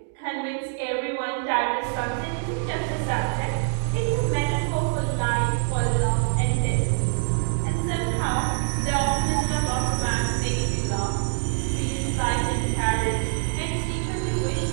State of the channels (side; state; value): left; silent; 62 dB below the other